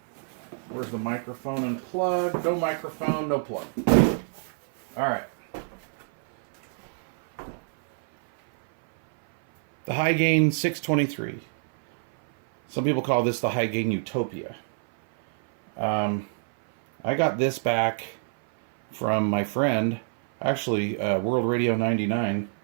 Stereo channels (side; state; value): left; silent; 58 dB below the other